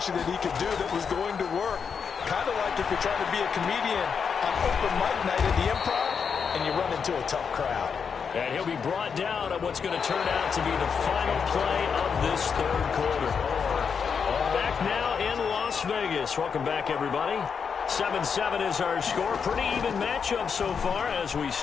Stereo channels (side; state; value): right; quieter; 6.3 dB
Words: that he could do that was going to work. Kind of like if you're trying to be a comedian on open mic night at the Improv, and you run into a tough crowd. And he'll be brought down on what's going to turn out to be the final play of this 3rd quarter. Back now in Las Vegas. Welcome back, everybody. 7-7 is our score. Pretty even matchup so far as we